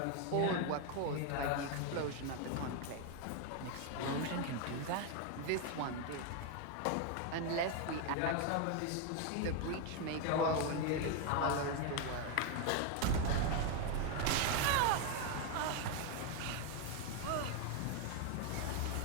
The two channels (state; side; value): different; both; correlation 0.01